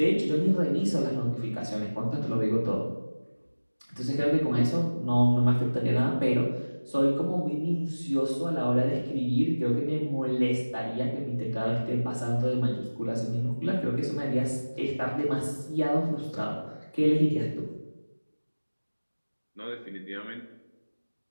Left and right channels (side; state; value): both; inverted; correlation -1.00